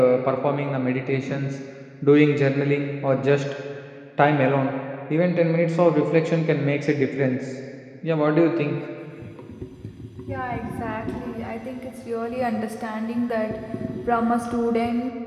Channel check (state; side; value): identical; both; correlation 1.00